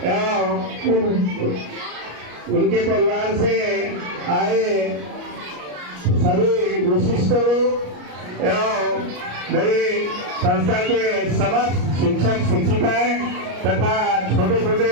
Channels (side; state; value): left; late; 34 ms